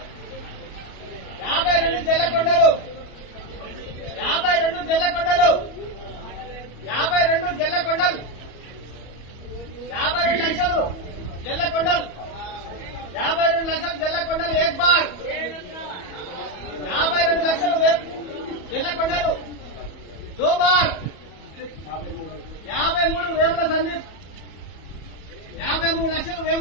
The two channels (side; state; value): right; late; 34 ms